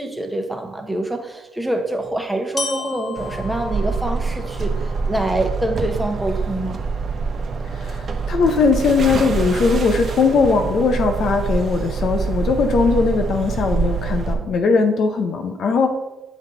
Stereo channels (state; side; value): normal; both; correlation 0.73